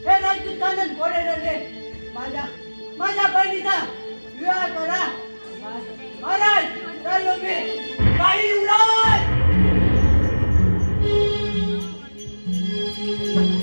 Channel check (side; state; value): both; inverted; correlation -1.00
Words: हे राजपूत खानदान कोडे ठरले. माझ्या बहिणीचा विवाह करा. महाराज चाललो मी. काही युवराज